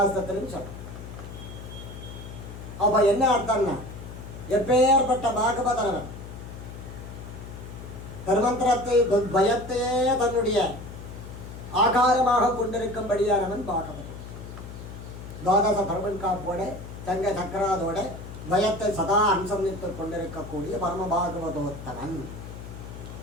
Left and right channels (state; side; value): noise; left; hum, 12 dB below the sound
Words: சொல்றேன். அப்ப என்ன அர்த்தம்னா, எப்பேற்பட்ட பாகவதனவன் தர்மந்திரத்தை பயத்தையே தன்னுடைய ஆகாரமாக கொண்டிருக்கும்படியானவன் பாகவதன். துவாதச பரமன் காப்போட தங்க சக்கராதோட பயத்தை சதா அனுசந்தித்துக் கொண்டிருக்கக்கூடிய பரம பாகவதோத்தமன்.